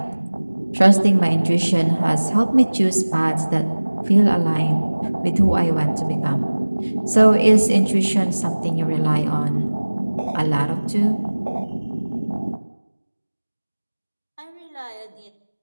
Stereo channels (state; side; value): inverted; both; correlation -1.00